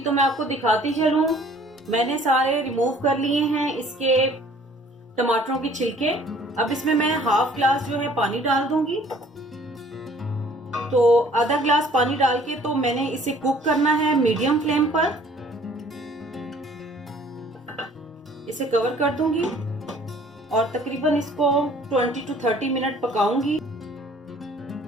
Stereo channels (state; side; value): normal; both; correlation 0.55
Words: तो मैं आपको दिखाती चलूं, मैंने सारे रिमूव कर लिए हैं इसके टमाटरों के छिलके। अब इसमें मैं हाफ ग्लास जो है पानी डाल दूंगी। तो आधा ग्लास पानी डाल के तो मैंने इसे कुक करना है मीडियम फ्लेम पर। इसे कवर कर दूंगी और तकरीबन इसको 20 to 30 मिनट पकाऊंगी।